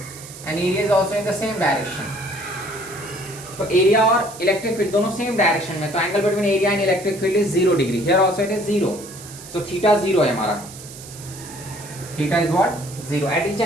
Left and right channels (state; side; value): noise; right; hiss, 15 dB below the sound